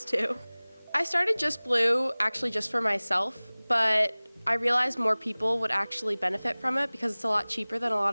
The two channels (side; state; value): both; inverted; correlation -1.00